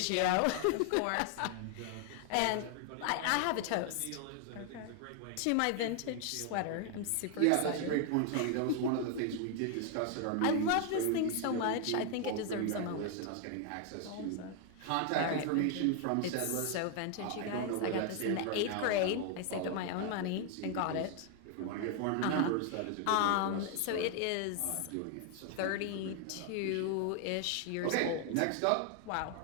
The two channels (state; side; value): different; both; correlation 0.00